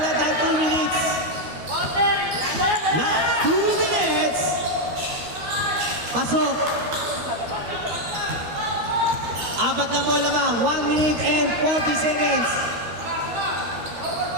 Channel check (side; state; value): left; late; 12 ms